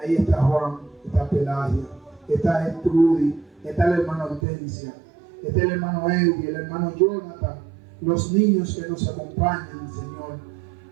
está Juan, está Pelagia, está Gertrudis, está el hermano Hortensia, está el hermano Eddie, el hermano Jonathan, los niños que nos acompañan, Señor.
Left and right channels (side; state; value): left; drops out; at 4.4 s